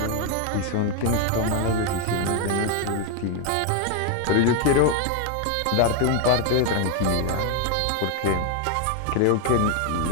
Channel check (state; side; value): different; both; correlation 0.01